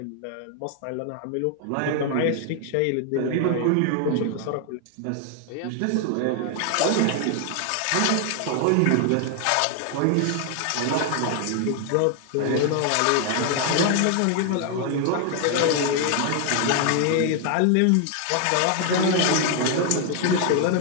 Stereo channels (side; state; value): both; different; correlation 0.00